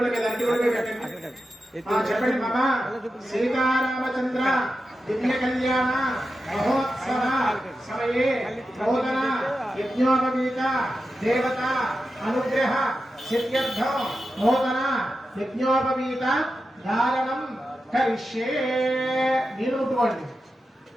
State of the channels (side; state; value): both; normal; correlation 0.90